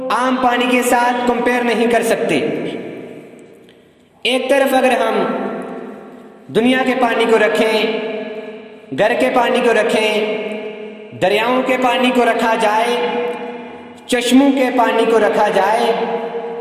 عام پانی کے ساتھ کمپیئر نہیں کر سکتے۔ ایک طرف اگر ہم دنیا کے پانی کو رکھیں، گھر کے پانی کو رکھیں، دریاؤں کے پانی کو رکھا جائے، چشموں کے پانی کو رکھا جائے،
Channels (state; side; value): identical; both; correlation 1.00